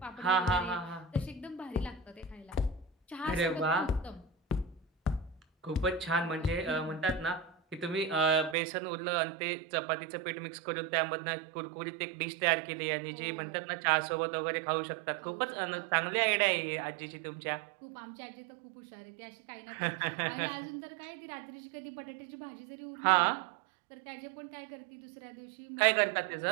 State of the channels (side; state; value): left; drops out; at 8.6 s